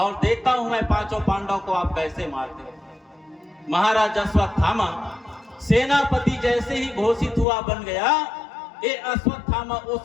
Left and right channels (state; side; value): drops out; right; at 7.5 s